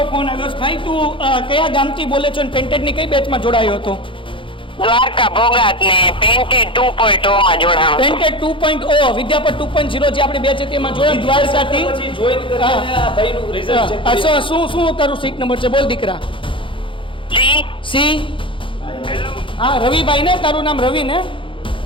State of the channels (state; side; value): late; right; 0.25 ms